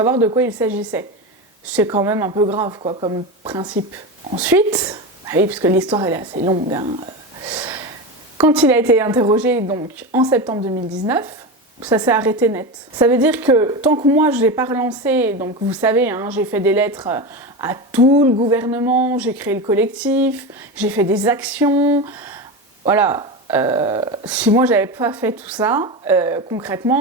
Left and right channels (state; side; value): normal; both; correlation 0.21